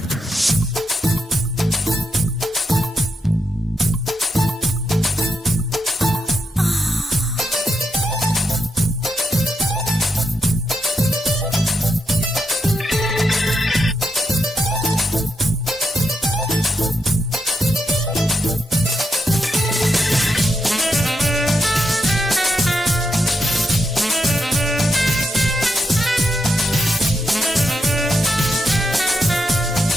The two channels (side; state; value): both; normal; correlation 0.82